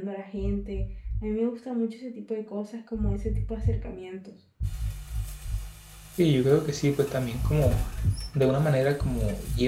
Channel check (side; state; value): both; identical; correlation 1.00